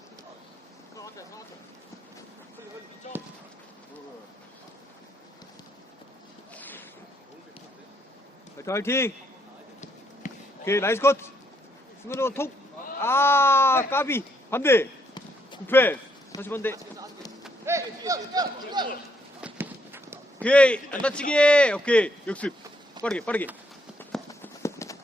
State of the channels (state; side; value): normal; both; correlation 0.73